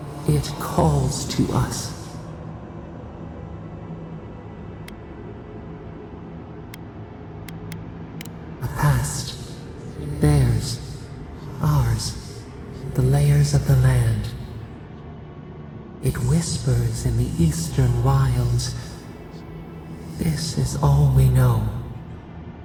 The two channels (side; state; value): both; identical; correlation 1.00